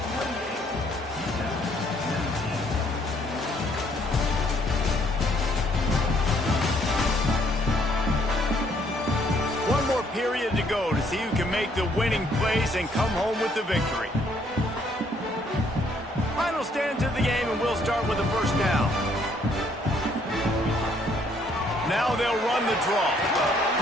One more period to go to see who can make the winning plays and come home with the victory. Final stand to the game, and we'll start with the 1st down. Now they'll run the draw.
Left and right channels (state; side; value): normal; both; correlation 0.67